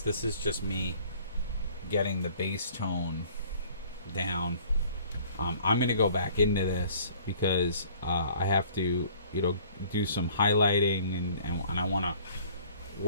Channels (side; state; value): both; inverted; correlation -0.54